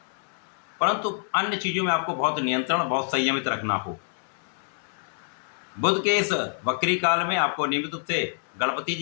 परंतु अन्य चीज़ों में आपको बहुत नियंत्रण, बहुत संयमित रखना हो। बुध के इस वक्री काल में आपको नियमित रूप से गणपति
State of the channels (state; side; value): silent; right; 60 dB below the other